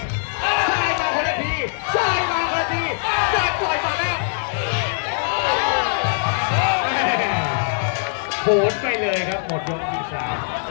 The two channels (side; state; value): right; silent; digital silence